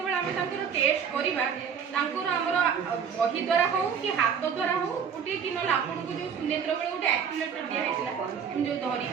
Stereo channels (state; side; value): quieter; left; 7.1 dB